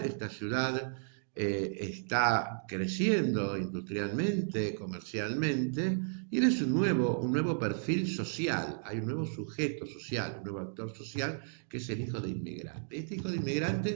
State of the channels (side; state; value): left; silent; digital silence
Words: esta ciudad está creciendo industrialmente, comercialmente, y él es un nuevo perfil social, hay un nuevo sujeto social, un nuevo actor social, que es el hijo de inmigrante. Este hijo de